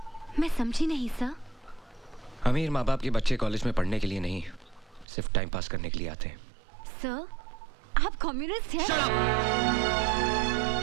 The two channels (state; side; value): drops out; left; at 5.1 s